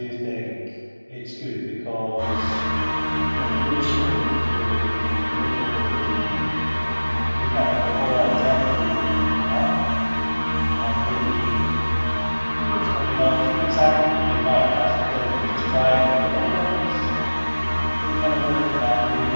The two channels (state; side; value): inverted; both; correlation -1.00